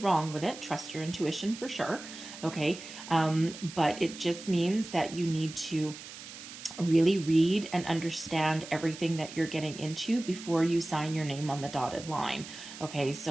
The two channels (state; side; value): noise; right; hiss, 13 dB below the sound